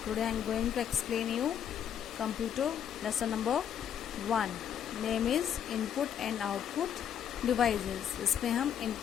Today I am going to explain you computer lesson number 1. Name is input and output devices. इसमें हम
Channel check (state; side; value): quieter; right; 9.0 dB